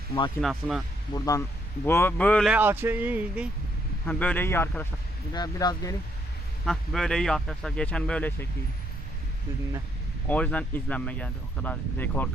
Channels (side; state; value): both; normal; correlation 0.73